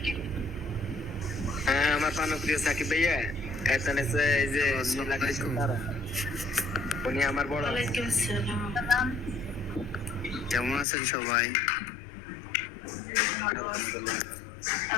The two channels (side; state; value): right; drops out; at 10.9 s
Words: হ্যাঁ আমার প্রিয় সাকিব ভাইয়া, এখানে এই যে তারা, উনি আমার বড়। ওয়ালাইকুম আসসালাম। কেমন আছেন সবাই? বিশেষ করে